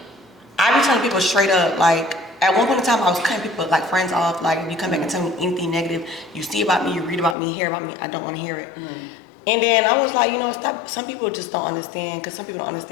I be telling people straight up, like at one point in time, I was cutting people like friends off. Like if you come back and tell me anything negative, you see about me, you read about me, hear about me, I don't want to hear it. And then I was like, stop. Some people just don't understand, because some people don't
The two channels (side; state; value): right; drops out; at 7.4 s